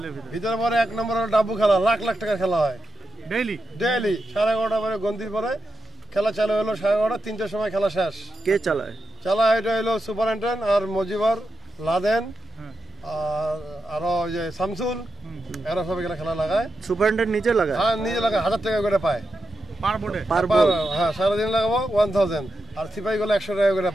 ভিতরে? ভিতরে পরে 1 নম্বর হলো ডাব্বু খেলা, লাখ লাখ টাকা খেলা হয় ডেইলি 11:30 পরে গন্তির পরে খেলা চালু হলো 11:30, 3টার সময় খেলা শেষ। কে চালায়? এটা হলো সুপারিনটেন্ডেন্ট আর মজিবর, লাদেন আর আরো যে শামসুল, এরা সব এখানে খেলা লাগায়। সুপারিনটেন্ডেন্ট নিজে লাগায়? হ্যাঁ নিজে লাগায়, 1000 টাকা করে পায় পার বোর্ডে। হ্যাঁ সারাদিন লাগাবো 1000, আর সিপাহি গুলো 100 টাকা করে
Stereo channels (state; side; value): normal; both; correlation 0.88